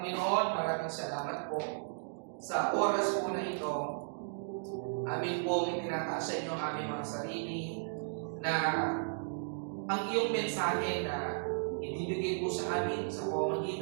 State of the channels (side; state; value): left; silent; digital silence